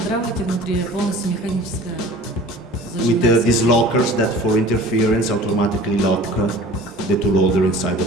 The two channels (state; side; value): normal; both; correlation 0.43